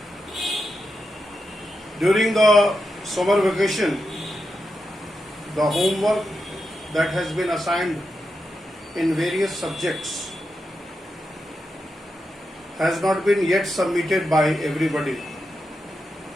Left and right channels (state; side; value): normal; both; correlation 0.87